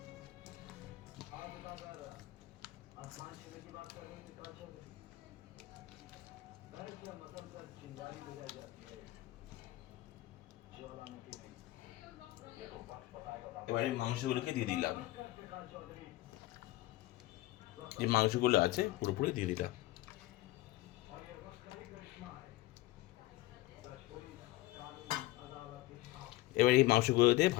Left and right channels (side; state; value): right; quieter; 18.1 dB